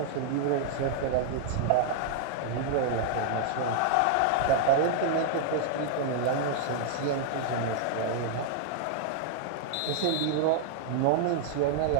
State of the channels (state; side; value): different; both; correlation -0.01